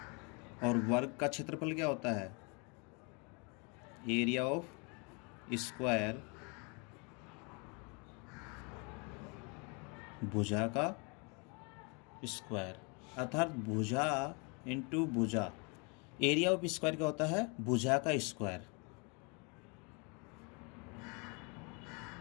और वर्ग का क्षेत्रफल क्या होता है? एरिया ऑफ स्क्वायर, भुजा का स्क्वायर, अर्थात भुजा इंटू भुजा। एरिया ऑफ स्क्वायर क्या होता है? भुजा का स्क्वायर,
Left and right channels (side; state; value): right; quieter; 32.8 dB